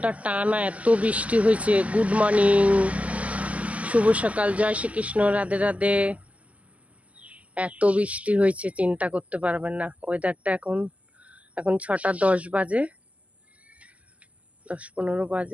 টানা এত বৃষ্টি হয়েছে। গুড মর্নিং, শুভ সকাল, জয় শ্রীকৃষ্ণ, রাধে রাধে। এত বৃষ্টি হয়েছে চিন্তা করতে পারবেন না। ওয়েদারটা এখন 6টা 10 বাজে, 10-15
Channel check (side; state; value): left; late; 0.070 ms